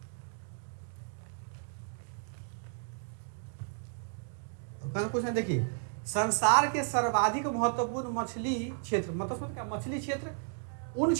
कुछ नहीं, देखिए, संसार के सर्वाधिक महत्वपूर्ण मछली क्षेत्र, मतलब क्या, मछली क्षेत्र उन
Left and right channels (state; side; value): silent; left; 55 dB below the other